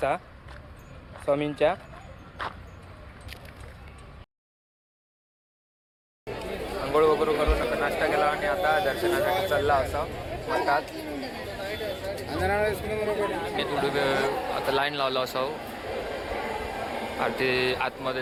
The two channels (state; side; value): identical; both; correlation 1.00